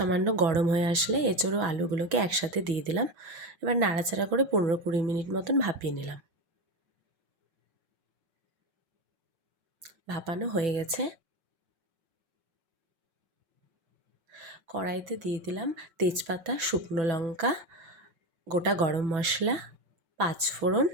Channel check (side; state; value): left; late; 6.1 ms